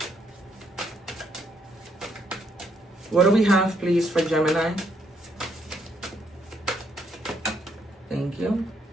What do we have, please, for Gemini? Thank you.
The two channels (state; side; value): normal; both; correlation 0.72